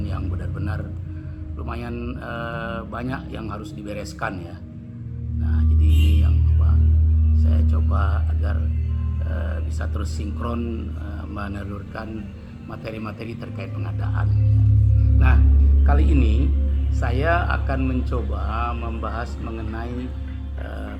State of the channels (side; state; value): both; identical; correlation 1.00